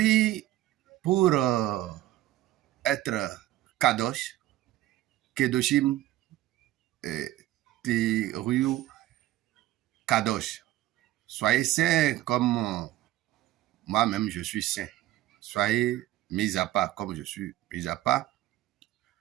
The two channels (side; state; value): left; quieter; 14.8 dB